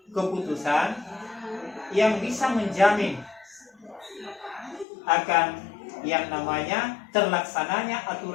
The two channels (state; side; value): drops out; right; at 4.9 s